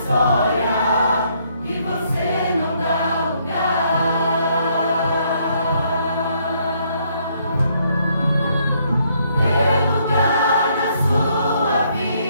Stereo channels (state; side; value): inverted; both; correlation -0.70